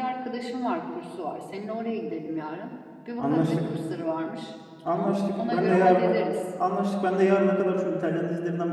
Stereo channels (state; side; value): identical; both; correlation 1.00